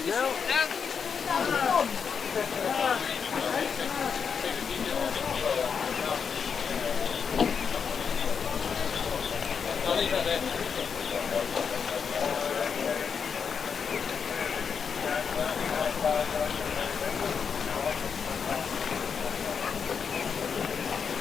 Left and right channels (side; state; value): right; quieter; 6.4 dB